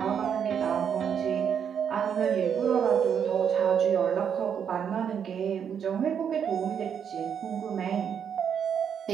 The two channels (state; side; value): quieter; left; 7.9 dB